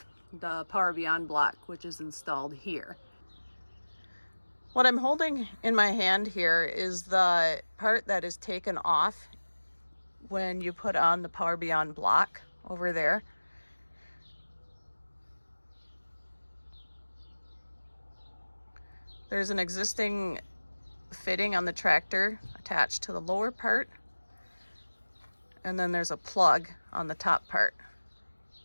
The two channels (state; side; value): inverted; both; correlation -1.00